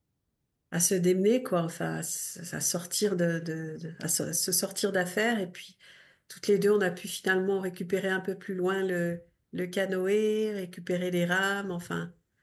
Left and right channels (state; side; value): identical; both; correlation 1.00